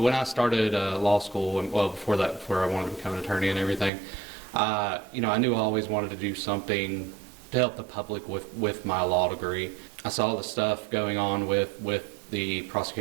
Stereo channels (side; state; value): left; drops out; at 3.9 s